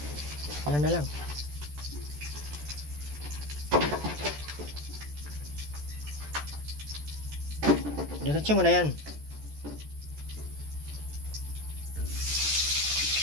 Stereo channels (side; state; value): left; late; 14 ms